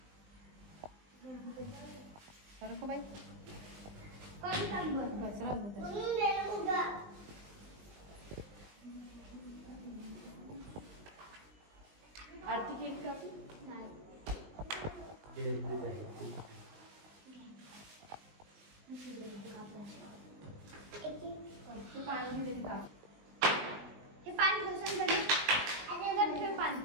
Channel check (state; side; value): late; left; 19 ms